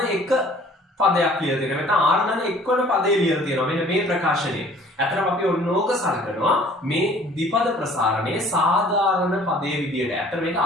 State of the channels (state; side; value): normal; both; correlation 0.53